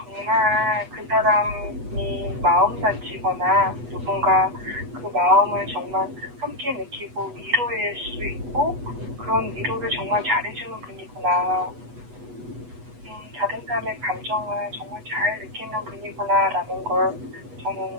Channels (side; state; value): left; late; 8.1 ms